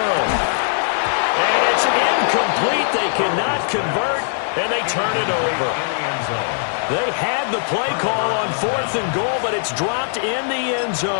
And it's incomplete. They cannot convert, and they turn it over. They had the play call on 4th and goal, but it's dropped in the end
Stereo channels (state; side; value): silent; right; digital silence